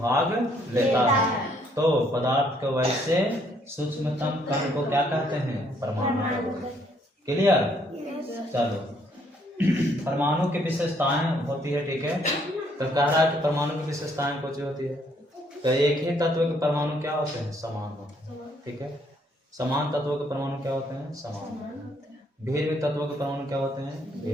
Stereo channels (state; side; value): normal; both; correlation 0.67